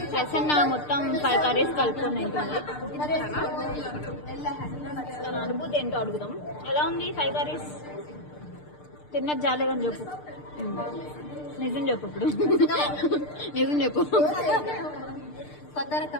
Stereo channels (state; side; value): late; right; 6.7 ms